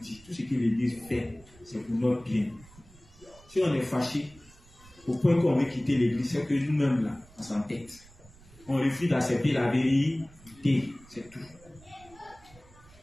tout ce que l'église fait, c'est pour notre bien. Si on est fâché, au point qu'on veut quitter l'église, c'est que nous-mêmes là, on s'entête. On refuse d'accepter la vérité, c'est tout.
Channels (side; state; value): right; noise; rumble, 24 dB below the sound